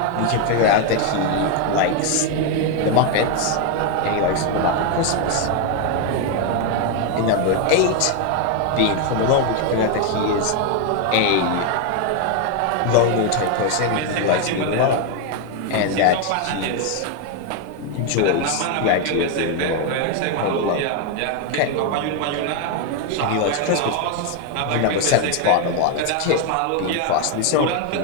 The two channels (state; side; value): different; both; correlation 0.01